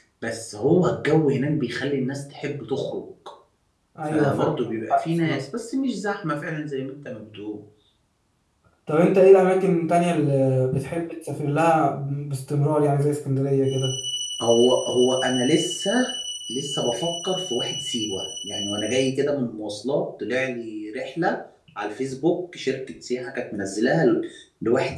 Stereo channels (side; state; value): both; identical; correlation 1.00